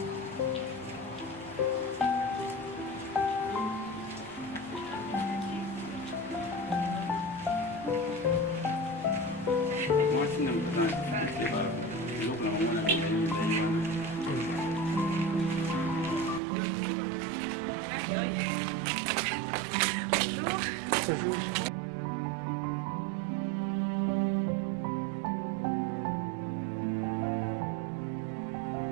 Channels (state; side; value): drops out; left; at 16.4 s